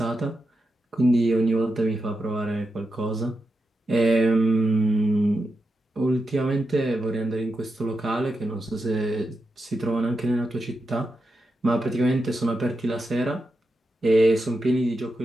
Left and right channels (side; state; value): both; normal; correlation 0.88